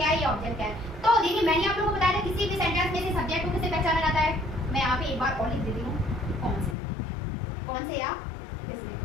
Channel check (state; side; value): drops out; right; at 6.8 s